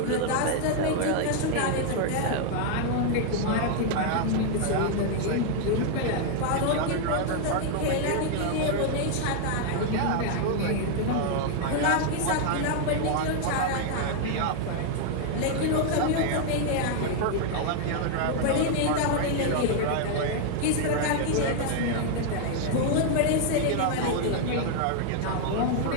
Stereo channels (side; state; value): both; different; correlation 0.00